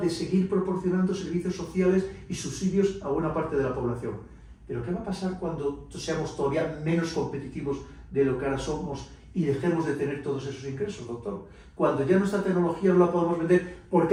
de seguir proporcionando servicios sociales y subsidios a buena parte de la población. Pero ¿qué va a pasar cuando seamos todavía menos competitivos de lo que ahora somos y dejemos de tener todos esos ingresos, doctor? Cuando ya nuestra tecnología no la podemos vender porque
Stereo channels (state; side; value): identical; both; correlation 1.00